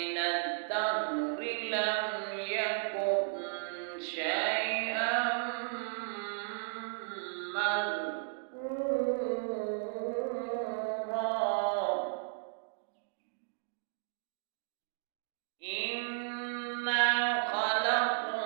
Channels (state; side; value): silent; left; digital silence